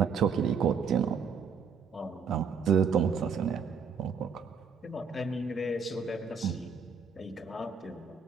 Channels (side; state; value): left; quieter; 5.8 dB